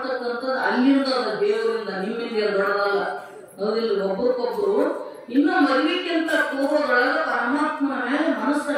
ಅಲ್ಲಿಂದ ದೇವರಿಂದ, ನಿಮ್ಮಿಂದ ದೊಡ್ಡದಲ್ಲ, ಹೌದಿಲ್ಲ. ಒಬ್ಬರಿಗೊಬ್ರು ಇನ್ನು ಮದುವೆಕ್ಕಿಂತ ಪೂರ್ವದೊಳಗ ಪರಮಾತ್ಮನ ಮೇಲೆ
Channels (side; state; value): both; identical; correlation 1.00